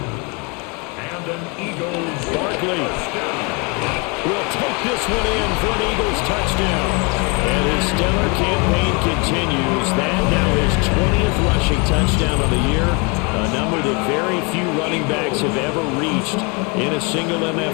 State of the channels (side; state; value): right; quieter; 31.0 dB